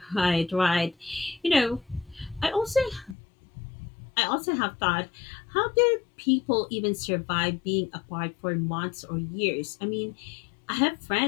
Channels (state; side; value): drops out; right; at 3.2 s